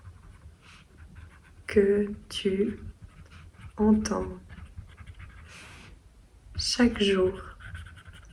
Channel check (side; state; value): both; identical; correlation 1.00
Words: que tu entends chaque jour